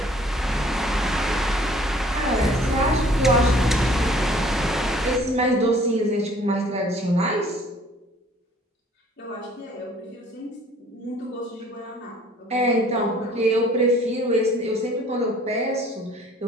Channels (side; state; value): both; normal; correlation 0.55